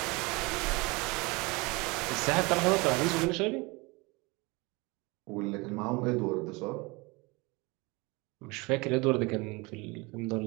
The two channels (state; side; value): quieter; left; 25.8 dB